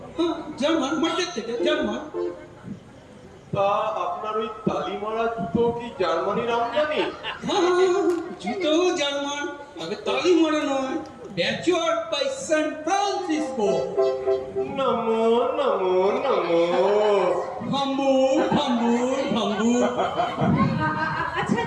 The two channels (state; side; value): identical; both; correlation 1.00